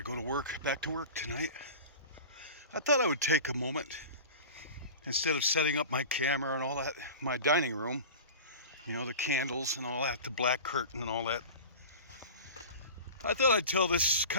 go to work, back to work tonight. I thought I would take a moment, instead of setting up my camera and all that, my dining room, the candles and all that, the black curtain and all that. I thought I'd tell this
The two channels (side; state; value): both; inverted; correlation -0.34